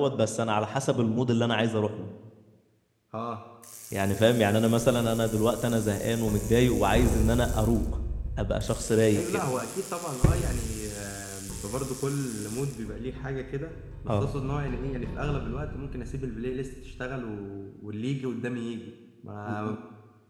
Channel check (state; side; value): identical; both; correlation 1.00